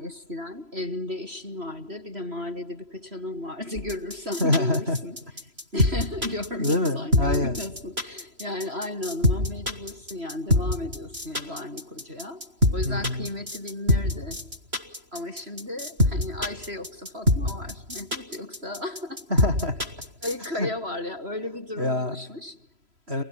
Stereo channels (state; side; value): late; left; 3.0 ms